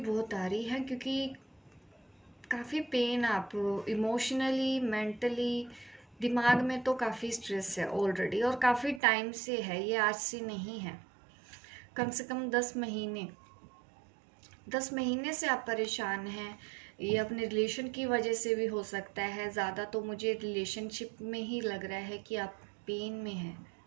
आ रही है, क्योंकि काफ़ी पेन, आप इमोशनली, मेंटली, दिमाग में तो काफ़ी स्ट्रेस है ऑलरेडी, और काफ़ी टाइम से है, ये आज से नहीं है। कम से कम 10 महीने से आप परेशान हैं। ये अपने रिलेशन की वजह से भी हो सकता है, ज़्यादा तो मुझे रिलेशनशिप में ही लग रहा है कि आप पेन में हैं।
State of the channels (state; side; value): drops out; left; at 9.0 s